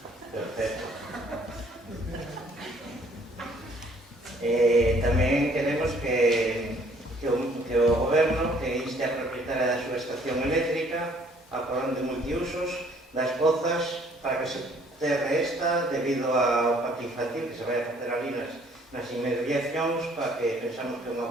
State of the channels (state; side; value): normal; both; correlation 0.60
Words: Perfecto. Tamén queremos que o Goberno que inste a propietaria da súa estación eléctrica a porón de multiusos das pozas para que se terre esta debido ao parque infantil que se vai a facer ali nas inmediacións, para que pensamos que é unha